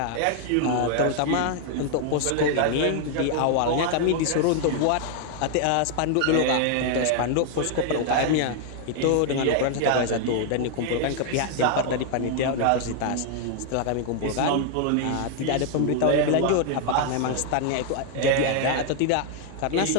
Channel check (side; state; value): both; different; correlation 0.00